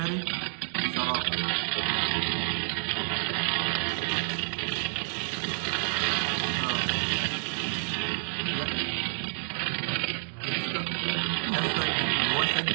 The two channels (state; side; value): silent; left; digital silence